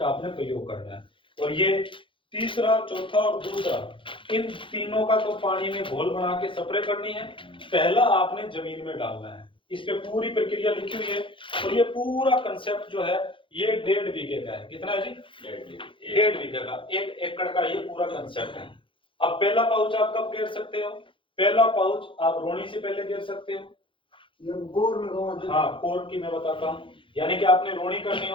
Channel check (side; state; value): right; late; 0.25 ms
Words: आपने प्रयोग करना है। और ये तीसरा, चौथा और दूसरा, इन तीनों का तो पानी में घोल बना के स्प्रे करनी है। पहला आपने जमीन में डालना है, इस पे पूरी प्रक्रिया लिखी हुई है। और ये पूरा कंसेप्ट जो है ये 1.5 बीघे का है। कितना है जी? 1.5 बीघे का, 1 एकड़ का ये पूरा कंसेप्ट है। अब पहला पाउच आप कब घेर सकते हो? पहला पाउच आप रोनी से पहले घेर सकते हो। हाँ, कोर की मैं बताता हूँ, यानी कि आपने रोनी करनी